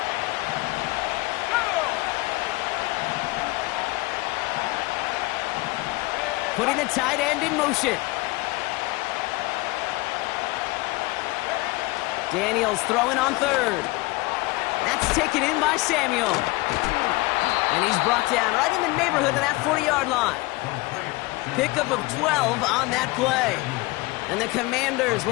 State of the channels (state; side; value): quieter; right; 22.5 dB